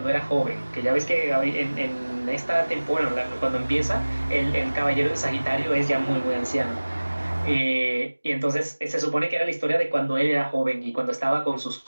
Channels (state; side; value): inverted; both; correlation -1.00